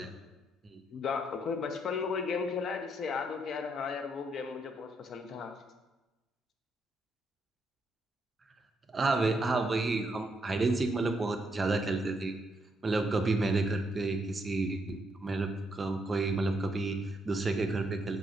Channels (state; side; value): normal; both; correlation 0.76